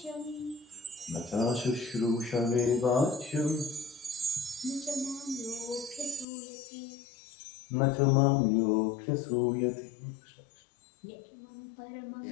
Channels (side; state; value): right; drops out; at 6.2 s